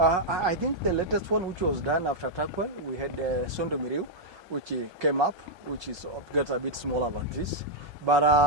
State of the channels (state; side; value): late; left; 1.2 ms